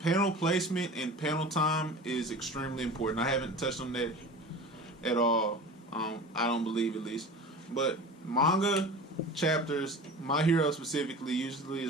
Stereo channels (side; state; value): both; normal; correlation 0.36